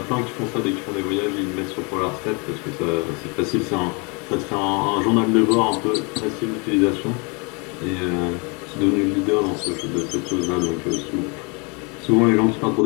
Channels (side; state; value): right; quieter; 31.5 dB